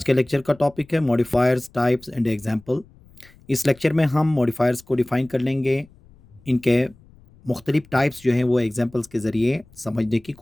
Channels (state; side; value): noise; left; rumble, 27 dB below the sound